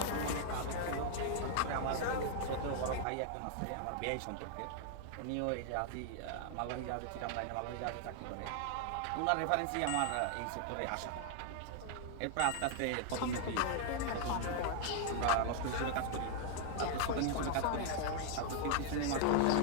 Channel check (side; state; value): both; different; correlation 0.00